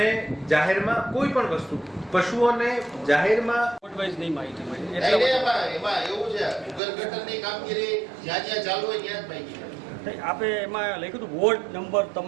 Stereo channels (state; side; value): drops out; left; at 6.8 s